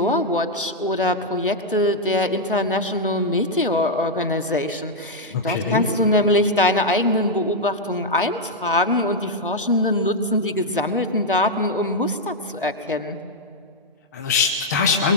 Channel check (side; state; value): both; normal; correlation -0.01